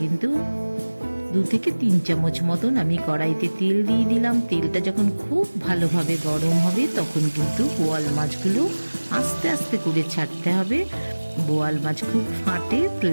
2 থেকে 3 চামচ মতন আমি কড়াইতে তেল দিয়ে দিলাম। তেলটা যখন খুব ভালোভাবে গরম হবে তখন কিন্তু বোয়াল মাছগুলো আস্তে আস্তে করে ছাড়তে হবে। বোয়াল মাছ খুব ফাটে,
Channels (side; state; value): both; inverted; correlation -1.00